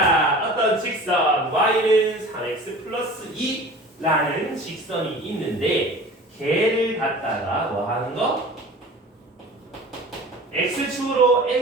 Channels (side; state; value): both; normal; correlation 0.41